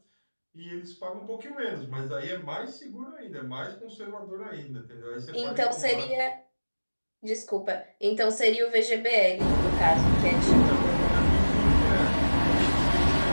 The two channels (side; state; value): both; inverted; correlation -1.00